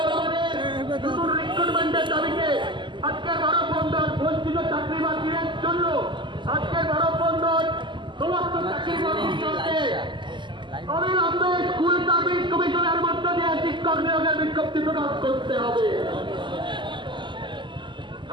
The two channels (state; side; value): late; left; 0.23 ms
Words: আমাদের নতুন রিক্রুটমেন্টের দাবিতে, আজকের মানববন্ধন বঞ্চিত চাকরি প্রার্থীদের জন্য, আজকের মানববন্ধন সমস্ত চাকরি প্রার্থীর জন্য অবিলম্বে স্কুল সার্ভিস কমিশনের মধ্য দিয়ে শিক্ষক নিয়োগের বিজ্ঞপ্তি প্রকাশ করতে হবে।